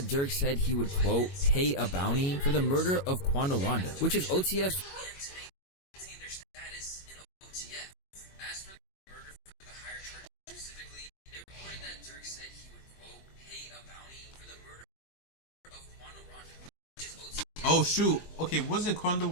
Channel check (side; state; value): right; late; 22 ms